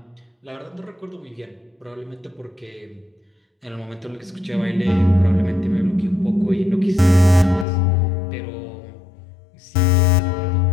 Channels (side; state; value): right; drops out; at 7.7 s